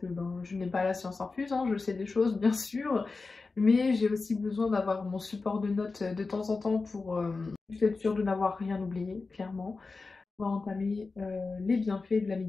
ben, je n'ai pas la science infuse, hein, je sais des choses bien sûr, mais j'ai aussi besoin d'avoir mon support de notes de temps en temps pour être sûre de n'avoir rien oublié, clairement. On va entamer les bienfaits de la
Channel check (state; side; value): quieter; right; 4.0 dB